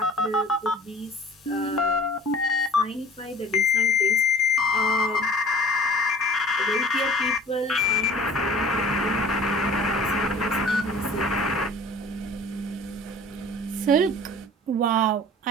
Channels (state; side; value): normal; both; correlation 0.46